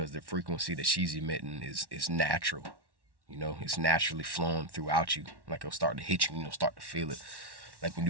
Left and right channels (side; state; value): left; late; 1.1 ms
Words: the frequency that she's emitting is natural. It's naturally flowing throughout you. Like it'll start to hit you, start to feel it. Like when